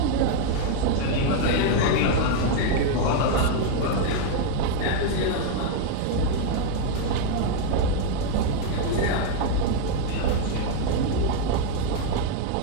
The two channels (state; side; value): different; both; correlation 0.01